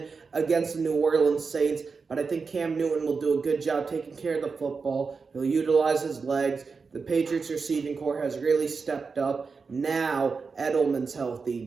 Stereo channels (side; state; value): left; quieter; 4.9 dB